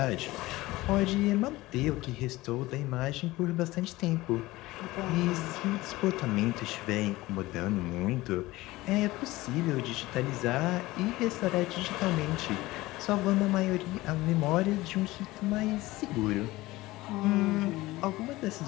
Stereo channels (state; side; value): quieter; right; 19.0 dB